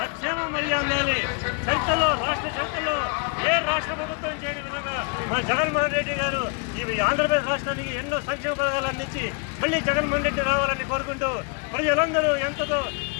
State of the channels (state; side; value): quieter; right; 33.8 dB